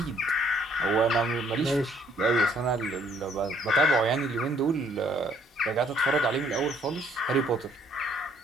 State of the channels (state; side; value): normal; both; correlation 0.64